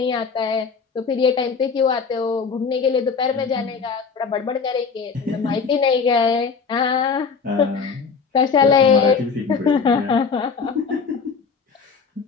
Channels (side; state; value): right; quieter; 5.4 dB